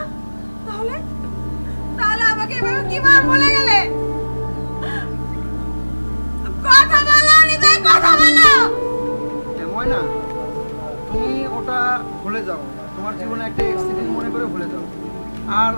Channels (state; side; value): inverted; both; correlation -1.00